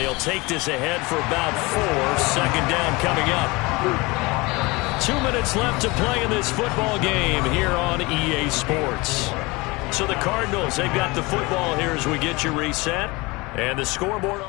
take this ahead for about 4. Second down coming up. 2 minutes left to play in this football game here on EA Sports. So the Cardinals, they've got the football here as we get you reset. And the scoreboard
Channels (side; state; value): right; quieter; 24.2 dB